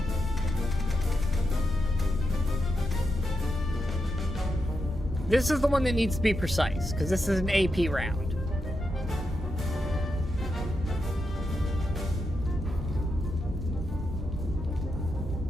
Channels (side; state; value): both; normal; correlation 0.86